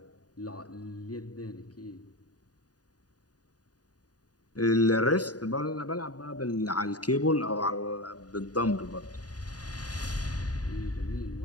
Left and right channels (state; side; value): late; right; 0.68 ms